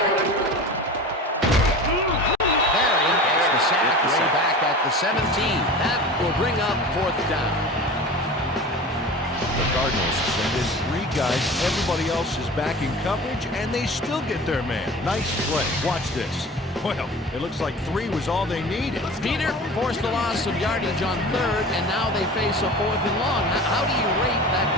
Barry gets the sack way back at the 17. That will bring up fourth down. The Cardinals send in 3 guys. Everybody else is back in coverage, and they still get their man. Nice play. Watch this. Well, it looks like 3 was all they needed. Peter forced a loss of yardage on third, and now they face a 4th and long. How do you rate that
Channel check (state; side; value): normal; both; correlation 0.36